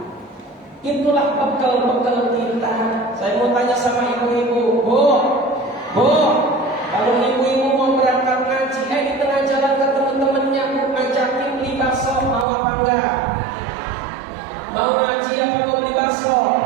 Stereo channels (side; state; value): left; drops out; at 12.5 s